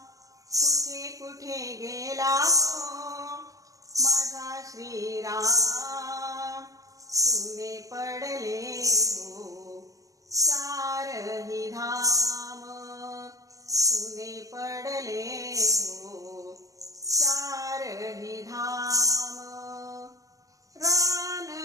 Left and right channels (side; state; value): left; late; 0.16 ms